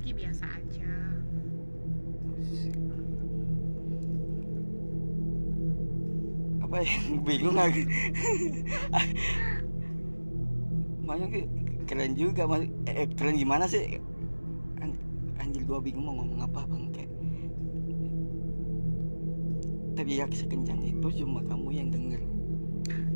biasa aja. Apa yang bingung aku? Maksudnya keren juga, keren gimana sih? Anjir, gua bingung mau ngomong apa bang. Kayak teriak sekencang itu cuma kamu yang denger.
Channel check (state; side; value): inverted; both; correlation -1.00